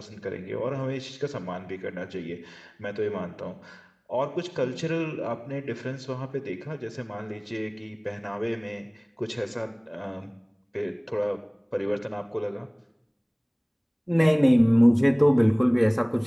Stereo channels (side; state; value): both; identical; correlation 1.00